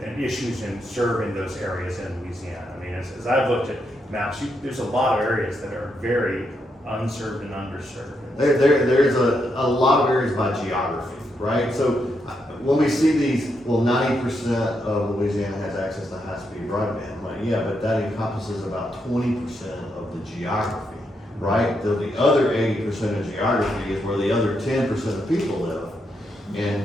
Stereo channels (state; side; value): normal; both; correlation 0.81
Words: issues in serving those areas in Louisiana? I mean, as I've looked at maps, there's a lot of areas that are very unserved and underserved. There's a lot of areas by geography, right? So when we see these, 90% of Louisiana has access to high-speed broadband. I'm like, yeah, but that encompasses about 20% of the geography, right? The other 80% of geography is where the other 10% of people live.